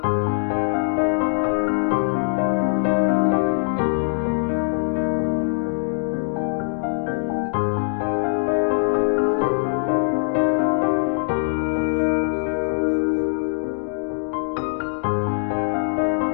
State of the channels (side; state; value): right; silent; digital silence